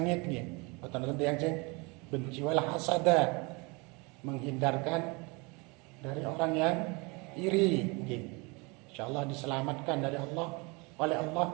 nggih, boten wonten tiyang sing benci. Wal hasada, menghindarkan dari orang yang iri nggih. Insyaallah diselamatkan dari Allah oleh Allah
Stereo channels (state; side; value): quieter; left; 28.3 dB